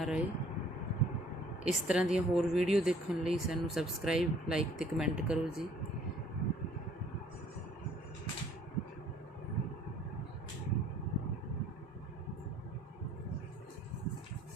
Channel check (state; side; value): normal; both; correlation 0.57